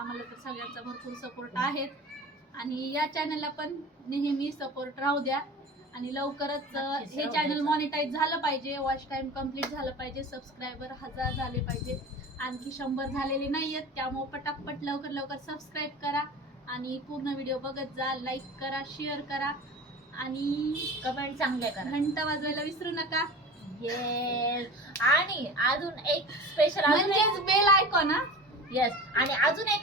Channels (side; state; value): both; normal; correlation 0.35